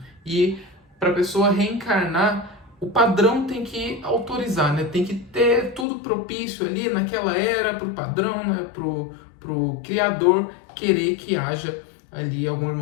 E para a pessoa reencarnar, o padrão tem que autorizar, né? Tem que ter tudo propício ali naquela era para o padrão, né? Pro criador querer que haja ali algum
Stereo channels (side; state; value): right; drops out; at 5.9 s